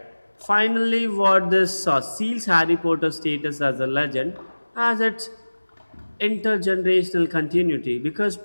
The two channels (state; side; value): inverted; both; correlation -1.00